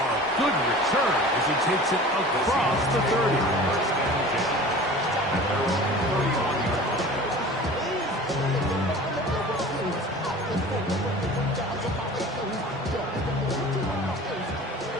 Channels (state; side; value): normal; both; correlation 0.40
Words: good return as he takes it across the 30.